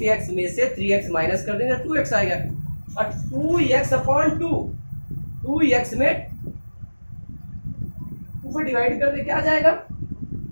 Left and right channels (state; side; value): inverted; both; correlation -1.00